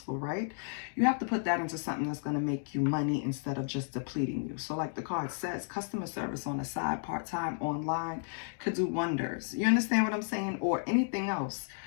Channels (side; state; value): right; silent; digital silence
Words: right? You have to put that into something that's going to make you money instead of just depleting you. So like the card says, customer service on the side, part-time, online, could do wonders. You understand what I'm saying? Or anything else.